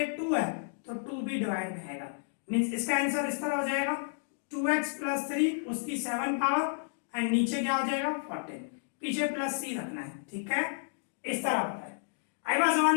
2 है तो 2 भी डिवाइड में आएगा, मींस इसका आंसर इस तरह हो जाएगा 2x प्लस 3 उसकी 7 पावर एंड नीचे क्या हो जाएगा 14, पीछे प्लस c रखना है, ठीक है, इस तरह होता है। आई बात समझ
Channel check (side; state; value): right; silent; digital silence